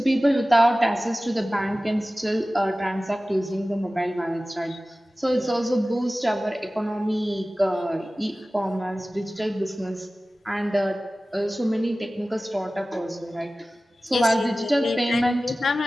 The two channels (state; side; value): normal; both; correlation 0.96